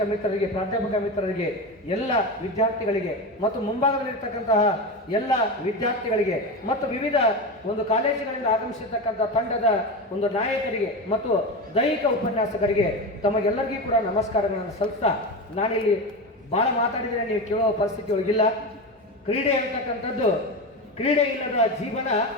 ಮಿತ್ರರಿಗೆ, ಪ್ರಾಧ್ಯಾಪಕ ಮಿತ್ರರಿಗೆ, ಎಲ್ಲ ವಿದ್ಯಾರ್ಥಿಗಳಿಗೆ ಮತ್ತು ಮುಂಭಾಗದಲ್ಲಿರ್ತಕ್ಕಂತಹ ಎಲ್ಲ ವಿದ್ಯಾರ್ಥಿಗಳಿಗೆ ಮತ್ತು ವಿವಿಧ ಒಂದು ಕಾಲೇಜಿನಿಂದ ಆಗಮಿಸಿರ್ತಕ್ಕಂಥ ತಂಡದ ಒಂದು ನಾಯಕರಿಗೆ ಮತ್ತು ದೈಹಿಕ ಉಪನ್ಯಾಸಕರಿಗೆ ತಮಗೆಲ್ಲರಿಗೂ ಕೂಡ ನಮಸ್ಕಾರಗಳನ್ನು ಸಲ್ಲಿಸ್ತಾ, ನಾನಿಲ್ಲಿ ಭಾಳ ಮಾತಾಡಿದರೆ ನೀವು ಕೇಳೋ ಪರಿಸ್ಥಿತಿ ಒಳಗಿಲ್ಲ. ಕ್ರೀಡೆ ಇರತಕ್ಕಂಥದ್ದು, ಕ್ರೀಡೆ ಇಲ್ಲದ ಜೀವನ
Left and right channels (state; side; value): normal; both; correlation 0.21